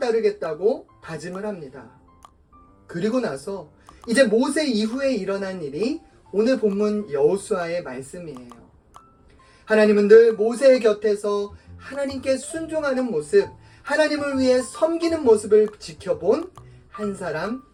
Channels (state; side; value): identical; both; correlation 1.00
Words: 다짐을 합니다. 그리고 나서 이제 모세 이후에 일어난 일이 오늘 본문 여호수아의 말씀이에요. 하나님은 늘 모세의 곁에서 하나님께 순종하는 모습, 하나님을 위해 섬기는 모습을 지켜본 한 사람